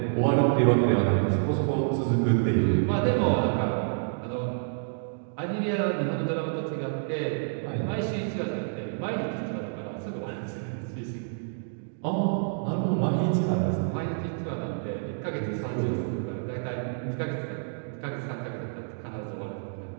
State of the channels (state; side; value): silent; left; digital silence